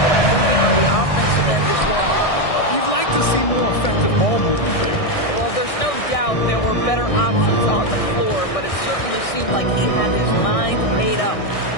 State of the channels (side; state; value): right; late; 1.6 ms